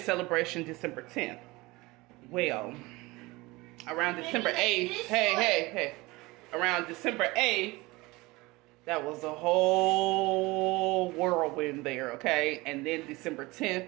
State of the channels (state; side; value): quieter; left; 22.3 dB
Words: December 10th. Well, around December 8th, hey, around December 8th, that was a whole whirlwind there, okay? And then December